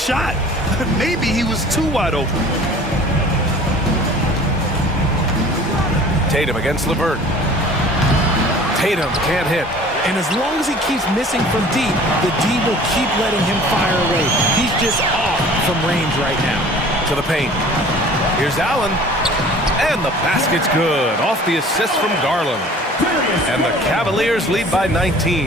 Maybe he was too wide open. Tatum against LeVert. Tatum can't hit. And as long as he keeps missing from deep, the D will keep letting him fire away. He's just off from range right now. To the paint. Here's Allen. And the basket's good. Off the assist from Garland. And the Cavaliers lead by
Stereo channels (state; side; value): normal; both; correlation 0.47